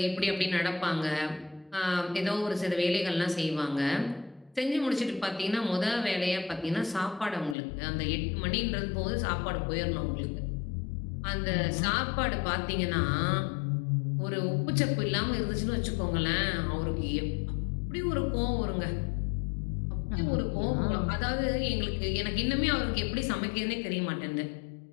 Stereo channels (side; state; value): right; drops out; at 7.6 s